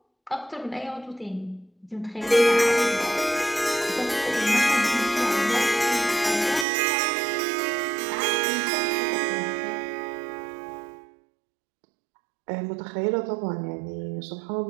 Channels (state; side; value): drops out; left; at 6.7 s